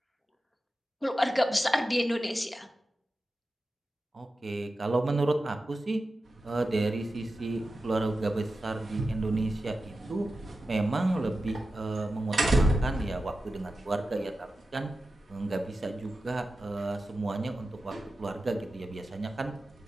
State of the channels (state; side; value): normal; both; correlation 0.92